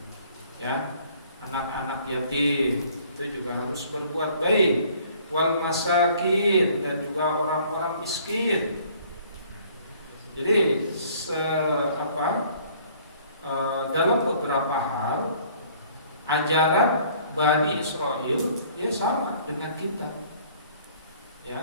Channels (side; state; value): both; inverted; correlation -0.57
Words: ya, anak-anak yatim itu juga harus berbuat baik, wal masakin, dan juga orang-orang miskin. Jadi dalam beberapa hal ajaran Bani Israel ya sama dengan kita.